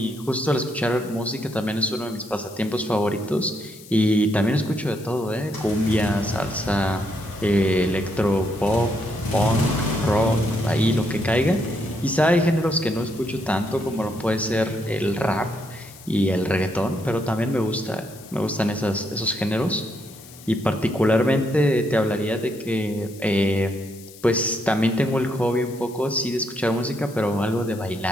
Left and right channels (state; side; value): noise; left; hiss, 20 dB below the sound